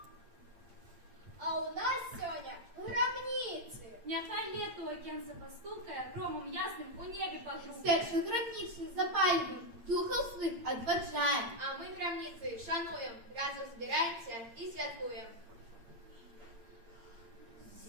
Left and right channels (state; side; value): late; left; 8.7 ms